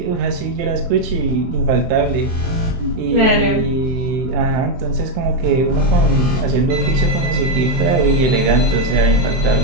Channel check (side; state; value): left; late; 23 ms